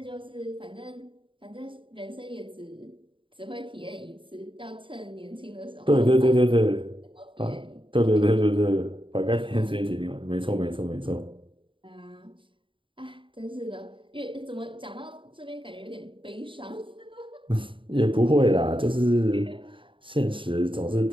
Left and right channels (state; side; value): late; left; 0.25 ms